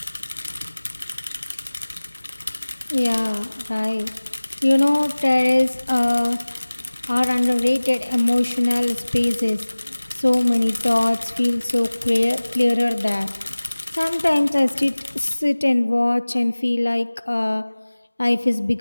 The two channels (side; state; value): both; inverted; correlation -1.00